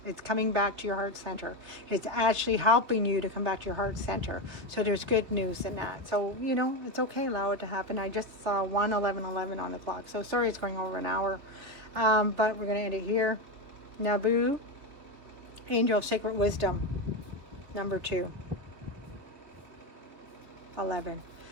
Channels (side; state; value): left; late; 3.7 ms